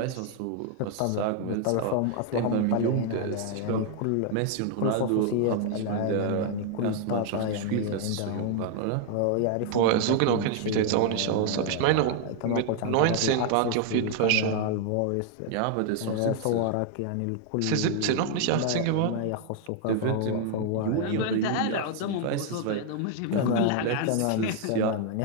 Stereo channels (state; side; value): different; both; correlation 0.00